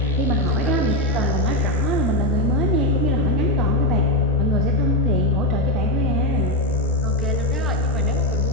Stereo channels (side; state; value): both; normal; correlation 0.07